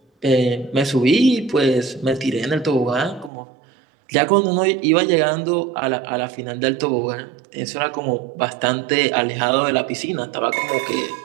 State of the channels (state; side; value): drops out; left; at 3.3 s